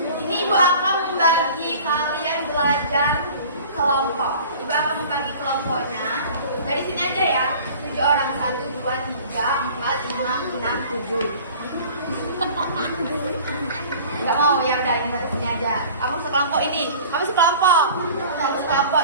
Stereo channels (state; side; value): inverted; both; correlation -0.45